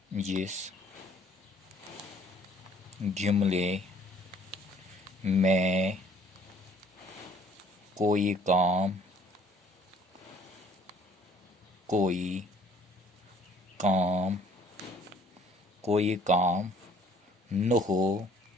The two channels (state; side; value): normal; both; correlation 0.58